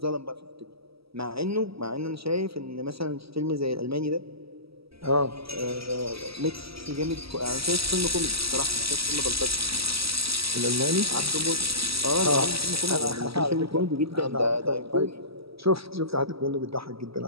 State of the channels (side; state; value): left; late; 0.76 ms